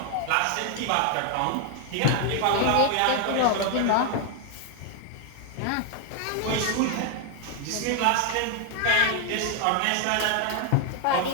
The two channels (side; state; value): both; different; correlation 0.00